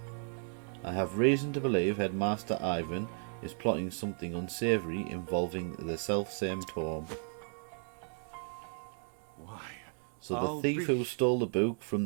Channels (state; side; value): silent; left; 55 dB below the other